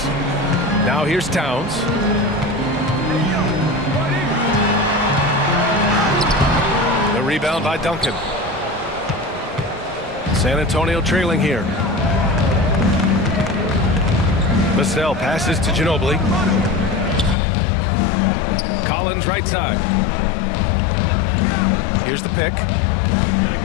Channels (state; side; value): drops out; right; at 17.4 s